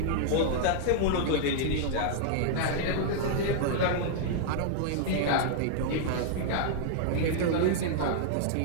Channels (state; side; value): different; both; correlation -0.01